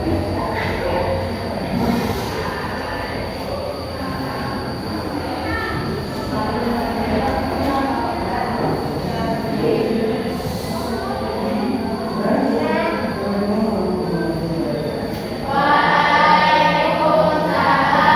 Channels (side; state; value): both; identical; correlation 1.00